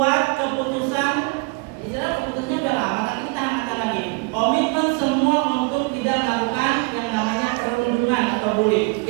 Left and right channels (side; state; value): left; quieter; 29.6 dB